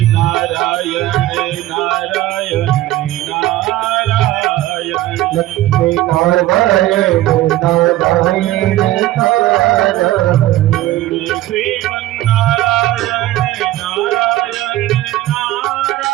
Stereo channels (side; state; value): left; quieter; 15.4 dB